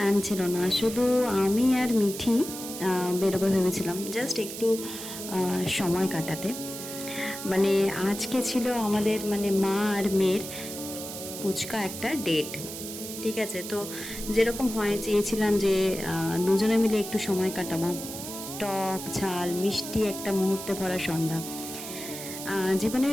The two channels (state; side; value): noise; right; hiss, 9 dB below the sound